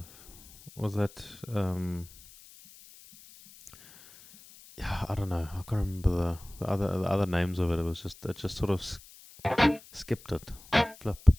was that yeah, I don't know. I can't remember the other names of it. It just sort of skipped it. Flip.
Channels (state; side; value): noise; left; hiss, 21 dB below the sound